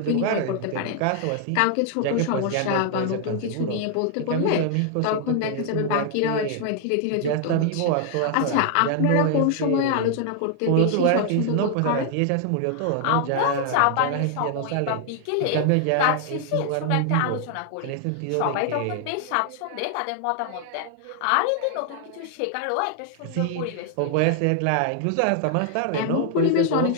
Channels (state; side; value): different; both; correlation 0.00